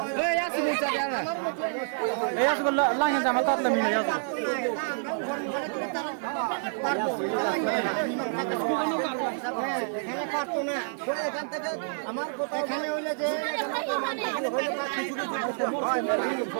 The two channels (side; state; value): left; silent; digital silence